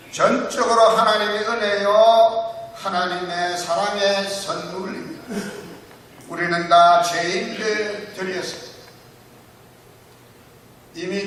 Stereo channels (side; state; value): both; identical; correlation 1.00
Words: 전적으로 하나님의 은혜요 하나님의 사랑의 선물입니다. 우리는 다 죄인들이었습니다.